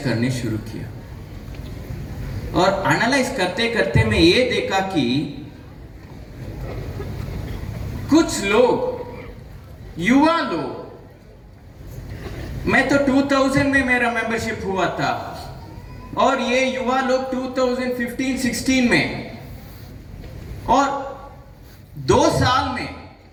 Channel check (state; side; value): identical; both; correlation 1.00